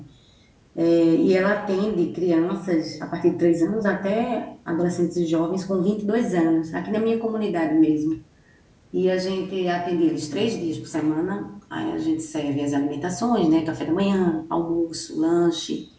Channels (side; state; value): both; identical; correlation 1.00